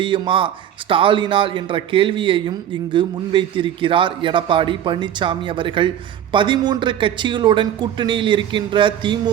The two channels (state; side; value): quieter; left; 10.4 dB